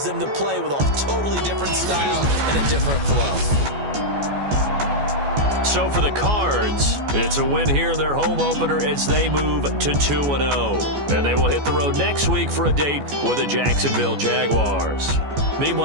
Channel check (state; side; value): late; left; 14 ms